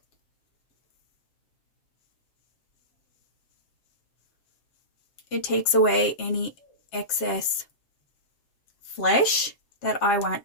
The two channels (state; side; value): late; right; 7.4 ms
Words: It takes away any excess flesh that I want